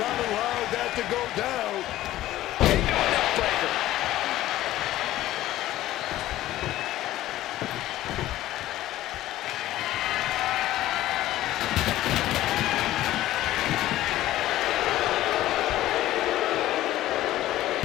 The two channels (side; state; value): right; quieter; 14.8 dB